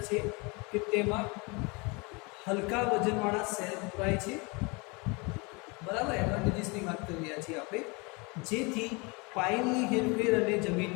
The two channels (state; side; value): quieter; right; 28.6 dB